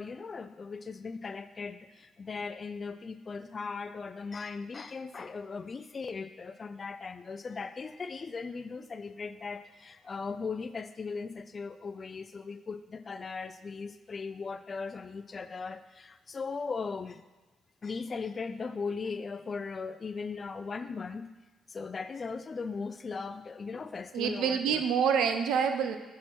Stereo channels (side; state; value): both; normal; correlation 0.70